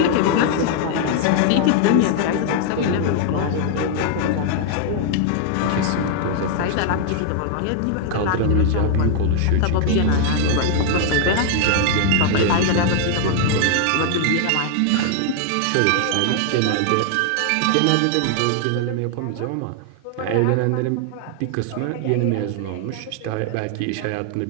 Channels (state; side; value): different; both; correlation 0.00